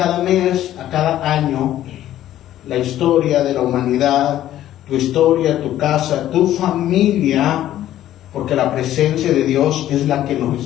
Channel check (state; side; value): quieter; right; 12.8 dB